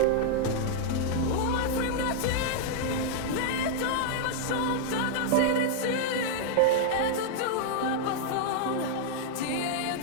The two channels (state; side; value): different; both; correlation -0.01